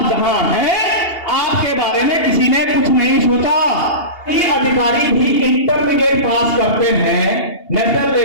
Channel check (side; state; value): right; late; 2.8 ms